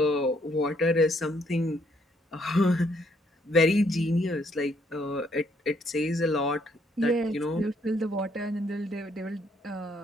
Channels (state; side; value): normal; both; correlation 0.70